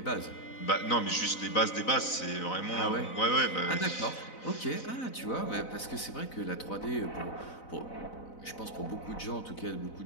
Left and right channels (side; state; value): right; late; 4.0 ms